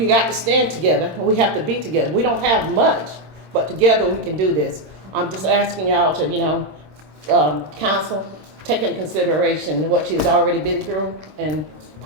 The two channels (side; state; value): left; late; 26 ms